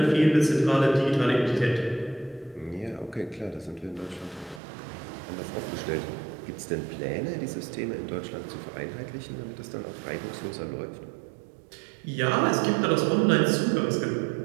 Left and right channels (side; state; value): left; drops out; at 4.6 s